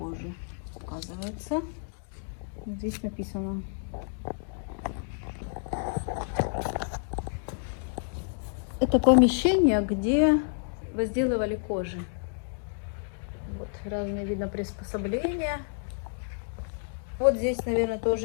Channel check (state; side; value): silent; right; digital silence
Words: Оказывается, вот здесь написано. Это помещение, где возделывали кожи. Вот разные, видно, приспособления. Вот здесь, наверное,